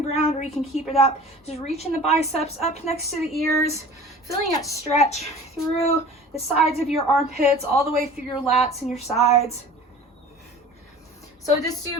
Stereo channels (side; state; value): both; normal; correlation 0.42